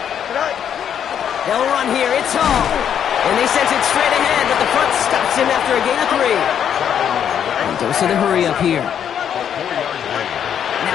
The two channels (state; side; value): quieter; right; 8.8 dB